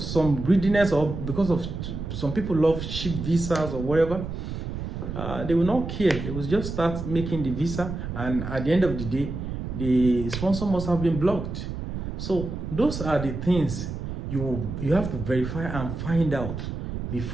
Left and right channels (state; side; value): noise; right; rumble, 6 dB below the sound